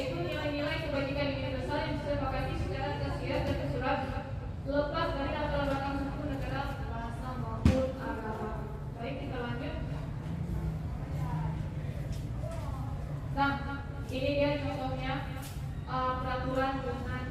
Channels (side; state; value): both; identical; correlation 1.00